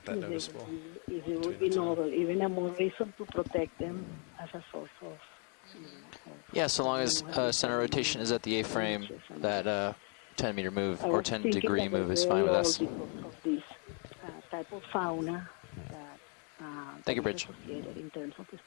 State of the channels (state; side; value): quieter; right; 38.2 dB